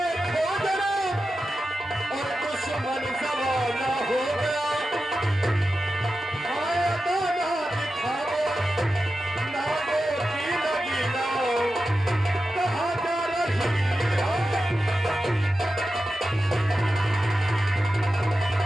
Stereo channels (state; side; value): normal; both; correlation 0.91